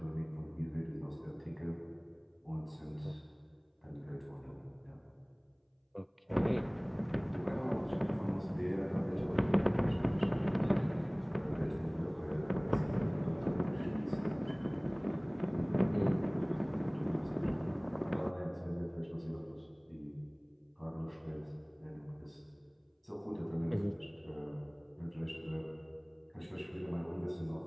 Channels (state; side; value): identical; both; correlation 1.00